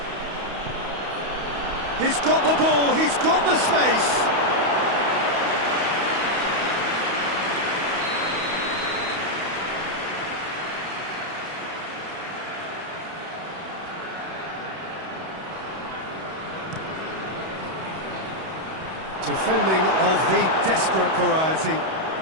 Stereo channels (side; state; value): left; late; 31 ms